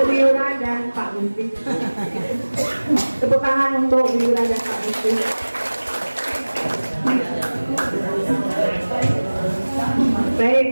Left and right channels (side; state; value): both; inverted; correlation -1.00